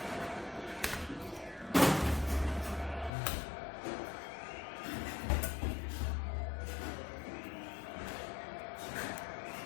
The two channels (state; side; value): drops out; right; at 3.1 s